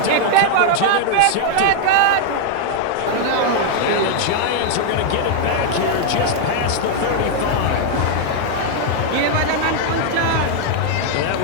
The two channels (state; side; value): different; both; correlation 0.00